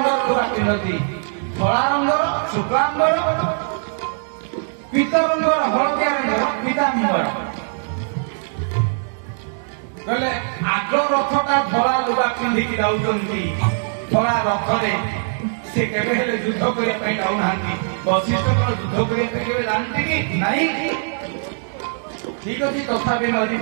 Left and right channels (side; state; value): left; silent; digital silence